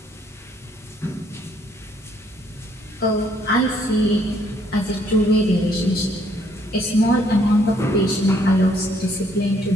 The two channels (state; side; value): normal; both; correlation 0.67